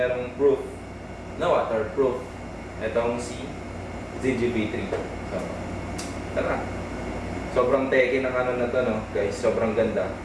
proof na waterproof. Itong si Zinji V3. So, tara. Sobrang teki ng ano na to, no? Guys, sobrang ganda.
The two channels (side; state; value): both; identical; correlation 1.00